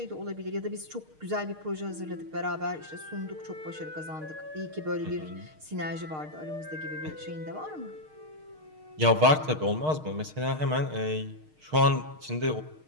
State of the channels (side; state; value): left; late; 6.5 ms